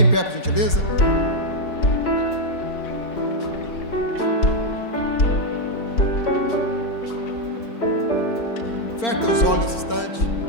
em pé, por gentileza. Feche teus olhos nesse instante.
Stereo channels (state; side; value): late; right; 4.3 ms